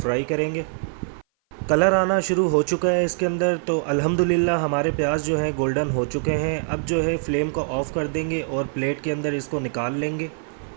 करेंगे। कलर आना शुरू हो चुका है इसके अंदर, तो अल्हम्दुलिल्लाह हमारे प्याज जो है गोल्डन हो चुके हैं। अब जो है फ्लेम को ऑफ़ कर देंगे और प्लेट के अंदर इसको निकाल लेंगे।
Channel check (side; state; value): left; silent; 57 dB below the other